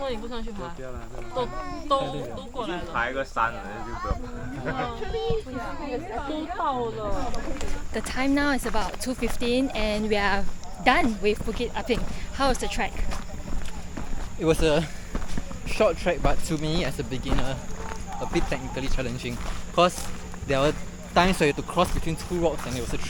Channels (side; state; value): both; identical; correlation 1.00